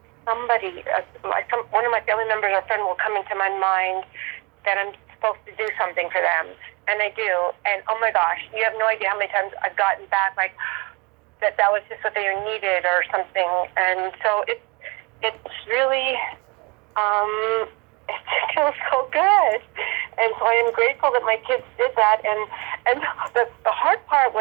somebody, one of my family members or friend will come into my mind that I'm supposed to do something for them. And I do. And oh my gosh, you have no idea how many times I've gotten back like that was just what they needed or something. And so it's really it feels so good. And so I am grateful that my kids did that. And the hard part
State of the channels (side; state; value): left; quieter; 28.4 dB